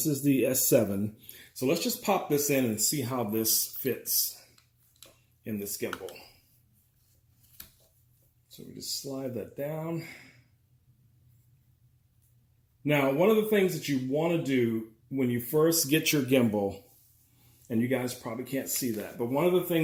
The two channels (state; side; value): identical; both; correlation 1.00